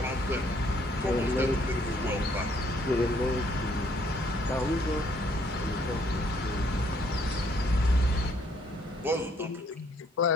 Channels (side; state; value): both; normal; correlation 0.66